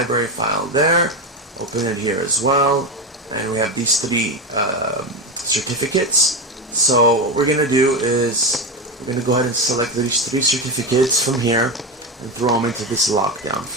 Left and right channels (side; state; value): both; normal; correlation 0.16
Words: file there. Open it here as well. And we have these three certificates. So what we're going to do is we're going to go ahead and select these three certificates from here and throw them into this lockdown